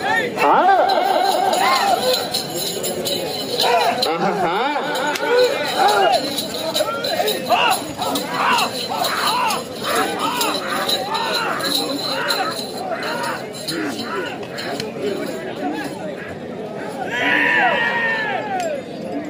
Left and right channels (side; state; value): both; identical; correlation 1.00